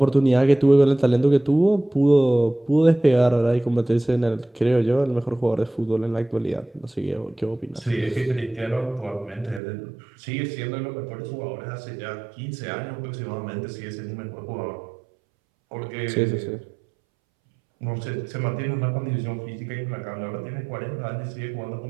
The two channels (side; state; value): left; drops out; at 9.6 s